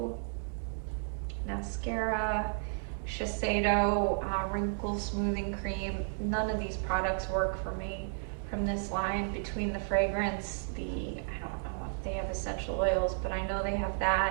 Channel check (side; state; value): left; silent; digital silence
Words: mascara, Shiseido wrinkle smoothing cream. None of these products work for me from this line. Between the fragrance, I don't know if they have essential oils, but I know they have